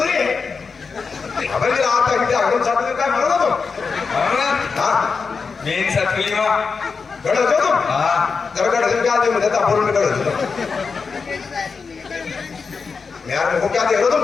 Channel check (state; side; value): quieter; right; 5.1 dB